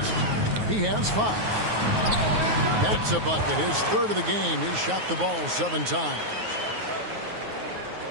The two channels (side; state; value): left; late; 9.5 ms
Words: He has 5. That's a bucket. His 3rd of the game. He's shot the ball 7 times.